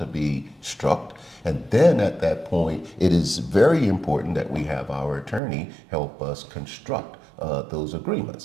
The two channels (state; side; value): drops out; left; at 5.4 s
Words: be struck? And then at that point, it is very important that we have our attorney help us construct those